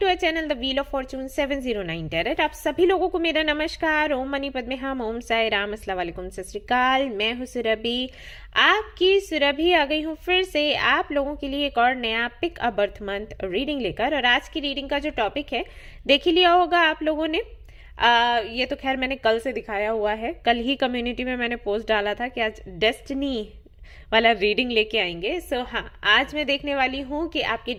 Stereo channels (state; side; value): identical; both; correlation 1.00